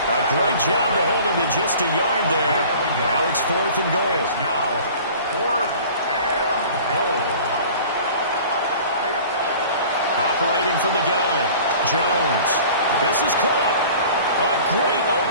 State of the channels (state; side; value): inverted; both; correlation -0.45